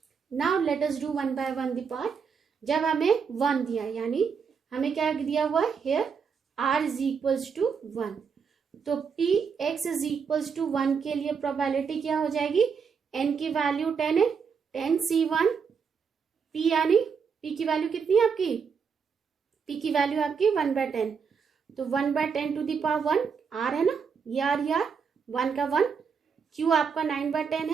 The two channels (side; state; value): left; quieter; 6.1 dB